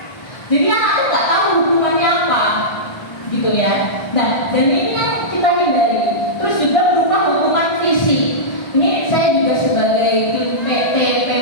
jadi anak itu nggak tahu hukumannya apa, gitu ya. Nah, dan ini yang kita hindari. Terus juga berupa hukuman fisik. Ini saya juga sebagai tim PT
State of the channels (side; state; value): right; late; 1.3 ms